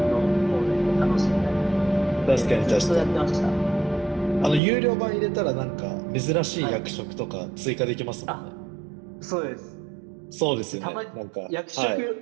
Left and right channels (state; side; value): drops out; left; at 4.6 s